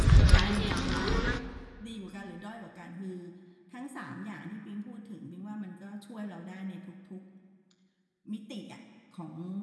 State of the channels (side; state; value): both; identical; correlation 1.00